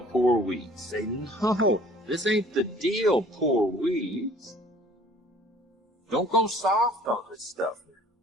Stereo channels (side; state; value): both; normal; correlation 0.53